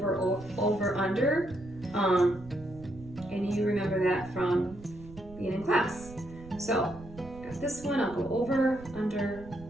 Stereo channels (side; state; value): right; noise; rumble, 17 dB below the sound